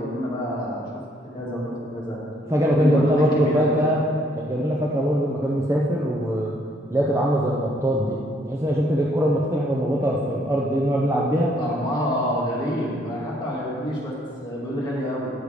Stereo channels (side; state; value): both; normal; correlation 0.67